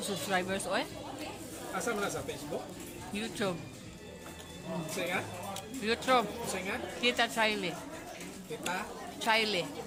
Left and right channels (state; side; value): identical; both; correlation 1.00